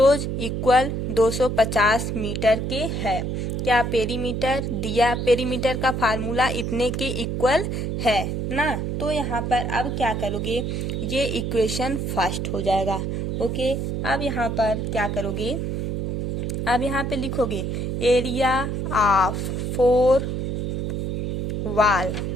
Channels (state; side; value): noise; right; hum, 2 dB below the sound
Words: equal 250 metre के है। क्या पेरीमीटर दिया पेरीमीटर का फार्मूला इतने के इक्वल है ना। तो यहाँ पर अब क्या करोगे ये इक्वेशन फर्स्ट हो जाएगा। ओके अब यहाँ पर क्या करोगे अब यहाँ पे लिखोगे area of 4